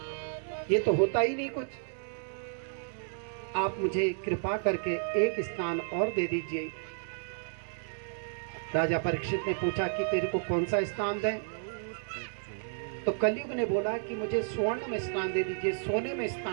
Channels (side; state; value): left; silent; digital silence